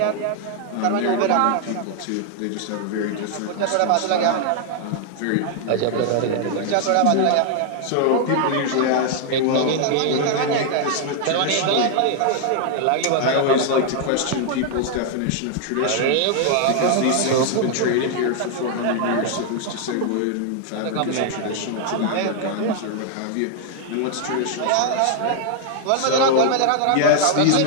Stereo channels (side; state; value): both; different; correlation 0.00